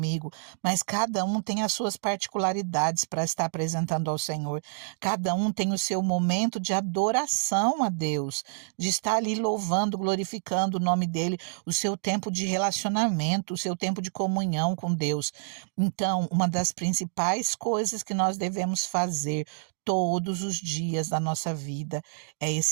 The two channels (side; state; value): left; silent; digital silence